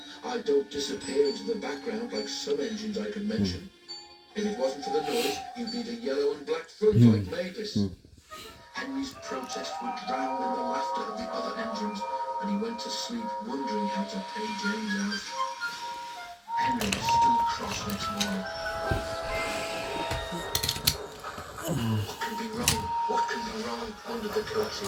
I don't disappear into the background like some engines I could mention. If it wasn't for the noise, you'd need a yellow and black front like Mavis. Henry's protests were drowned in the laughter of the other engines, and he went to sleep wondering how to pay James out. Henry was still cross next morning. What can be wrong? What can be wrong? Wondered the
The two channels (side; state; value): both; identical; correlation 1.00